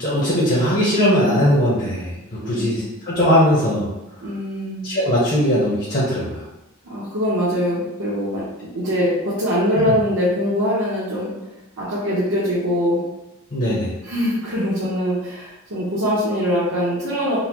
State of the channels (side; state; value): both; normal; correlation 0.36